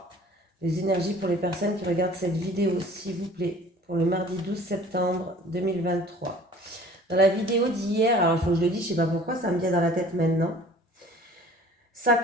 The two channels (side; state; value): both; normal; correlation 0.49